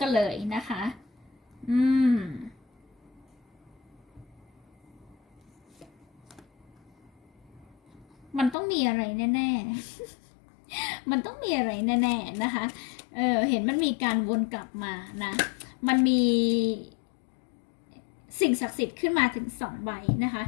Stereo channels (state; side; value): drops out; right; at 8.6 s